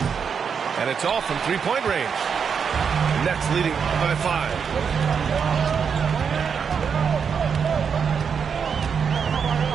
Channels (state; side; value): quieter; left; 6.6 dB